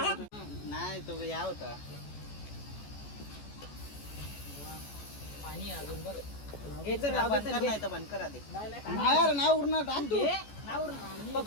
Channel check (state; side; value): late; right; 14 ms